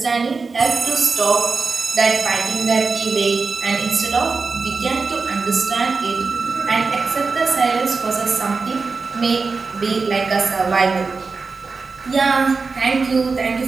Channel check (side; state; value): left; quieter; 4.4 dB